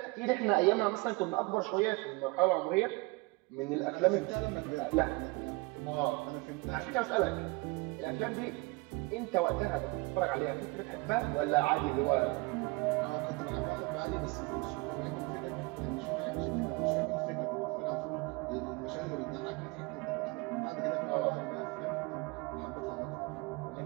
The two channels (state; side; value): quieter; left; 25.5 dB